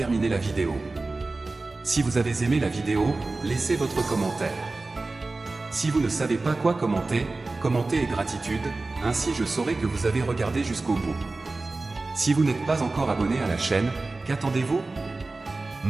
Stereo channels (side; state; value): left; quieter; 3.4 dB